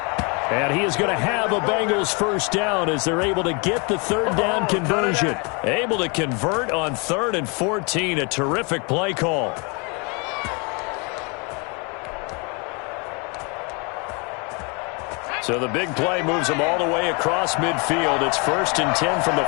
And he is going to have a Bengals first down as they're able to get the third down conversion. Able to convert on 3rd and 14. A terrific play call. So the big play moves them all the way across midfield. It's 1st and 10 from the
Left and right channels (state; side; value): quieter; right; 32.3 dB